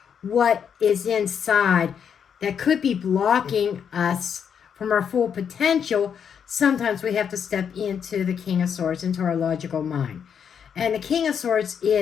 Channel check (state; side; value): quieter; right; 7.6 dB